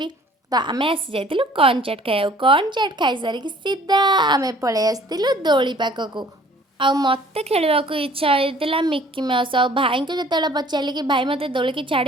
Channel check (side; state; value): both; normal; correlation 0.54